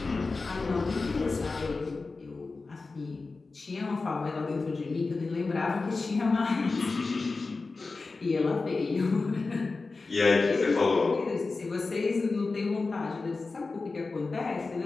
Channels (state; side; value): quieter; right; 3.9 dB